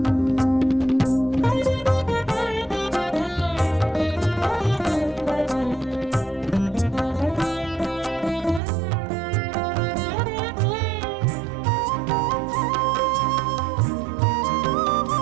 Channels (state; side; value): drops out; left; at 8.6 s